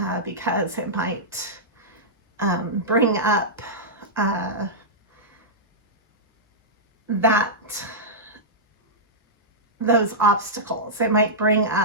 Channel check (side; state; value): both; normal; correlation -0.11